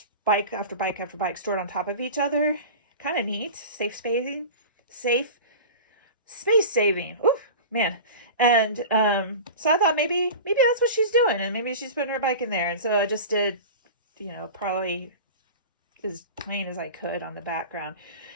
bike after bike after bike stored on top of each other. Kind of neat. Safe space saving. Ooh, man. And so I thought maybe that's what she's doing, and maybe she's putting her bike in there. And so I just did, you know, probably as plain as I could on the background.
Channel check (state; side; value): inverted; both; correlation -0.33